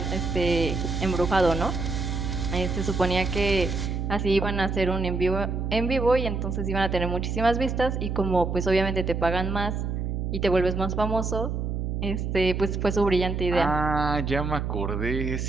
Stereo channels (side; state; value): right; noise; hum, 2 dB below the sound